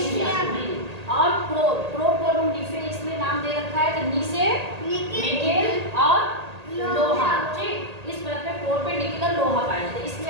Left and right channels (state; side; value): late; left; 1.8 ms